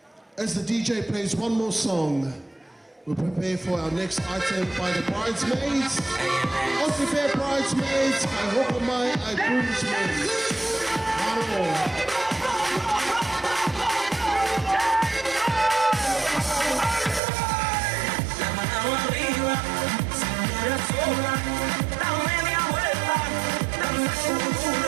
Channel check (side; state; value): left; drops out; at 17.2 s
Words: As the DJ plays one more song, We'll prepare for our next item by the bridesmaids. Aussie Fair bridesmaids, I hope my I groomsmaids. Hello. Da media vuelta, danza